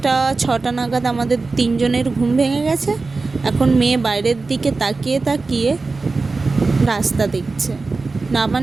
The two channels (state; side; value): quieter; left; 3.9 dB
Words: 6টা নাগাদ আমাদের তিনজনের ঘুম ভেঙে গেছে। এখন মেয়ে বাইরের দিকে তাকিয়ে তাকিয়ে রাস্তা দেখছে।